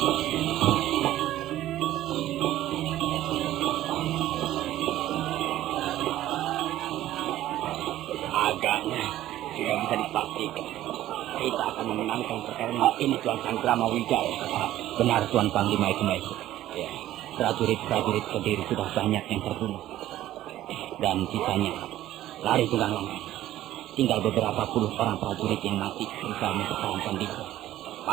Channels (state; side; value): quieter; left; 13.9 dB